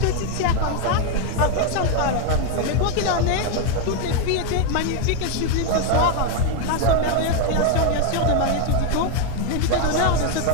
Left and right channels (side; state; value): both; different; correlation 0.01